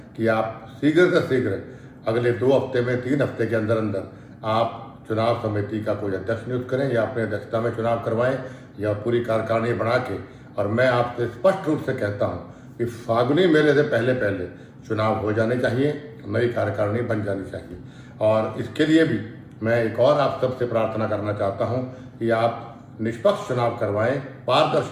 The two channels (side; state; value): both; identical; correlation 1.00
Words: कि आप शीघ्र से शीघ्र अगले 2 हफ्ते में, 3 हफ्ते के अंदर अंदर आप चुनाव समिति का कोई अध्यक्ष नियुक्त करें या अपने अध्यक्षता में चुनाव करवाएं या पूरी कार्यकारिणी बना के। और मैं आपसे स्पष्ट रूप से कहता हूं कि फागुनी मेले से पहले पहले चुनाव हो जाने चाहिए, नई कार्यकारिणी बन जानी चाहिए। और इसके लिए भी मैं एक और आप सबसे प्रार्थना करना चाहता हूं कि आप निष्पक्ष चुनाव करवाएं,